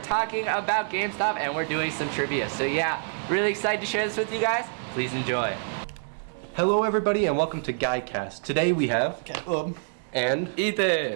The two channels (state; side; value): silent; left; 61 dB below the other